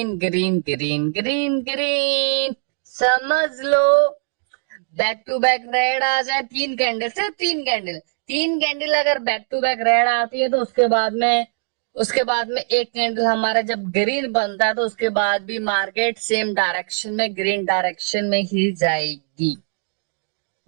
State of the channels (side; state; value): left; silent; digital silence